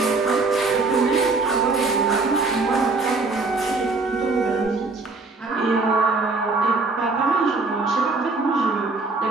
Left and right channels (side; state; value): left; quieter; 3.7 dB